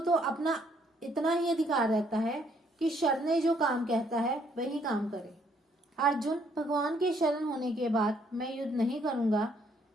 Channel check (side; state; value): both; normal; correlation 0.68